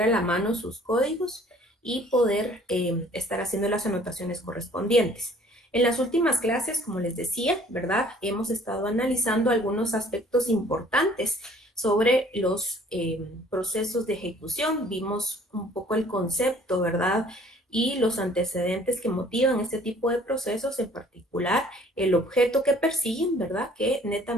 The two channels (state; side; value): normal; both; correlation 0.55